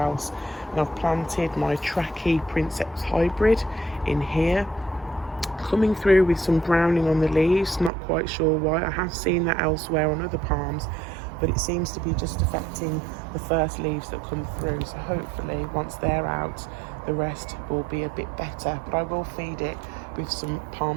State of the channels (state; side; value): drops out; left; at 7.9 s